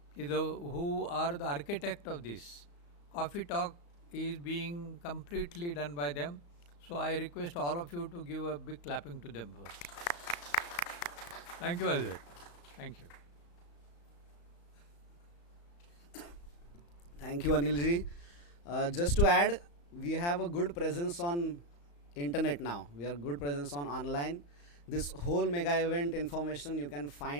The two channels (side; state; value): right; late; 35 ms